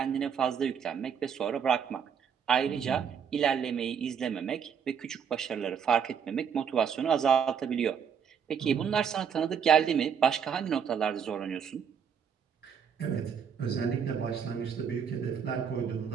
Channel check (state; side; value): quieter; left; 7.4 dB